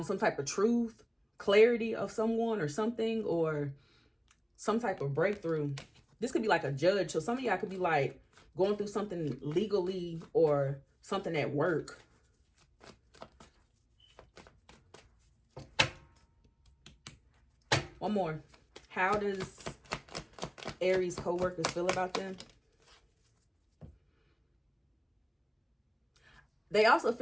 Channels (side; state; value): both; identical; correlation 1.00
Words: some type of truth, clarity of someone or something, or some type of breakthrough. This could be like a judge. So some of y'all could be like going through something legally or something at work. One more. How does Aries co-workers feel about them? They also